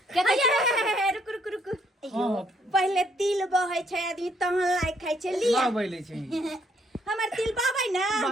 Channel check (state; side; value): normal; both; correlation 0.69